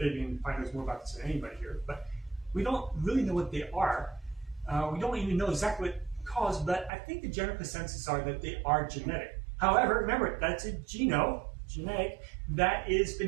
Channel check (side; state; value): left; drops out; at 6.9 s